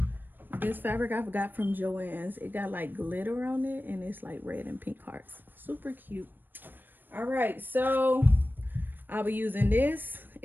this fabric I got from Joann's. It got like glitter on it and it's like red and pink hearts. Super cute. All right, so I'll be using this.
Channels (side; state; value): left; late; 0.093 ms